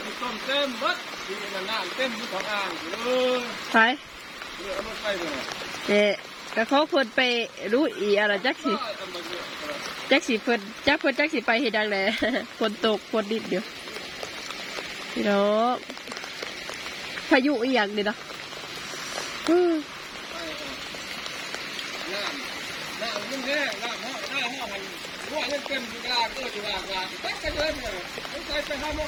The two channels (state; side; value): identical; both; correlation 1.00